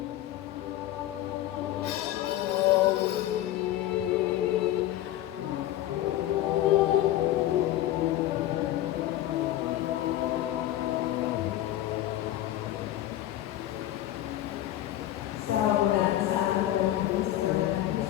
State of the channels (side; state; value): right; quieter; 13.8 dB